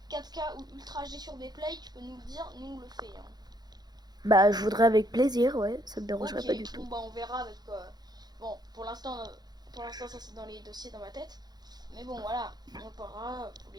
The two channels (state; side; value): late; left; 0.20 ms